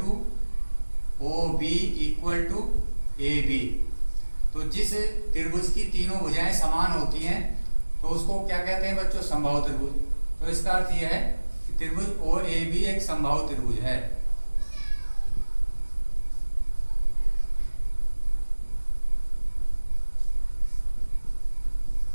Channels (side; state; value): both; inverted; correlation -1.00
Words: O B equal to A B. तो जिस त्रिभुज की तीनों भुजाएं समान होती हैं तो उसको क्या कहते हैं बच्चों, समबाहु त्रिभुज। तो इसका अर्थ यह है कि त्रिभुज ओ ए बी एक समबाहु त्रिभुज है।